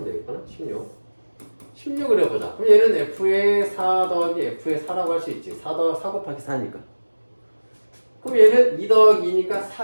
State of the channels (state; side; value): inverted; both; correlation -1.00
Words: 되겠구나. 16을 해보자. 그럼 얘는 f의 4 더하기 f의 4라고 할 수 있지. 4 곱하기 4니까. 그럼 얘는 2 더하기 2니까